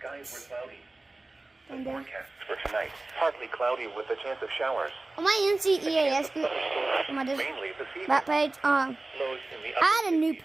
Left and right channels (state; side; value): quieter; left; 3.0 dB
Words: were cloudy. The And then- forecast for tonight: partly cloudy with a chance of showers. On my NCEAS group, on my Mainly this evening. that page, Lows in the I had a upper